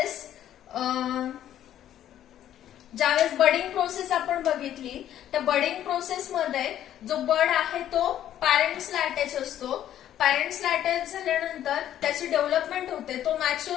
बडिंग प्रोसेस आपण बघितली, त्या बडिंग प्रोसेस मध्ये जो बड आहे तो पॅरेंट्सला अटॅच असतो. पॅरेंट्सला अटॅच झाल्यानंतर त्याची डेव्हलपमेंट होते, तो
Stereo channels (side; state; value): right; quieter; 11.4 dB